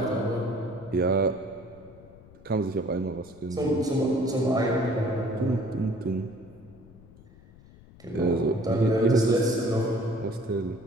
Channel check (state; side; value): noise; left; rumble, 23 dB below the sound